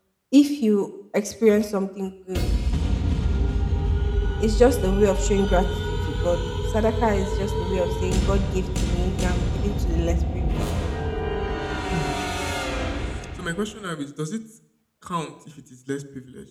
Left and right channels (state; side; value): identical; both; correlation 1.00